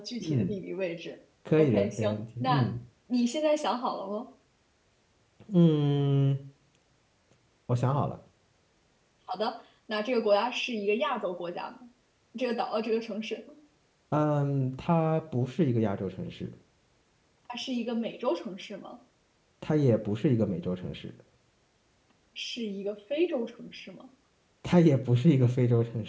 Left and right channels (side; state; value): both; identical; correlation 1.00